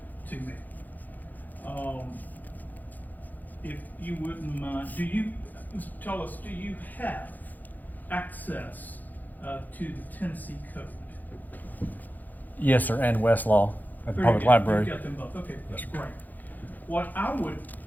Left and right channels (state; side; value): late; right; 0.084 ms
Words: to me. If you wouldn't mind, Mr. Tellis, do you have access to the Tennessee Code? Yes, sir, and Westlaw at the Very public good. library. You've got them both. Okay, that's Yes, great.